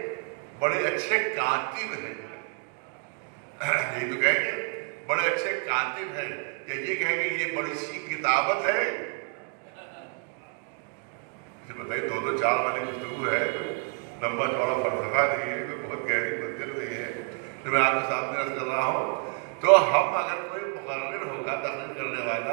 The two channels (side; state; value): left; quieter; 39.8 dB